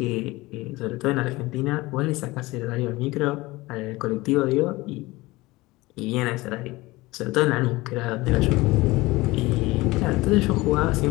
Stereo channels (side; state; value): right; quieter; 20.6 dB